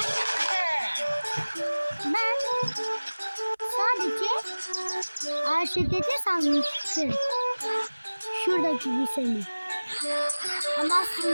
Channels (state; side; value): inverted; both; correlation -1.00